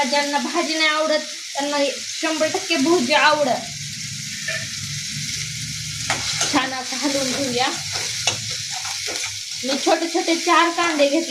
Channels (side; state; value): both; identical; correlation 1.00